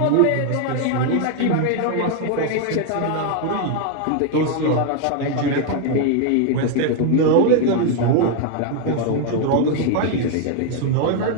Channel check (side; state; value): both; different; correlation 0.01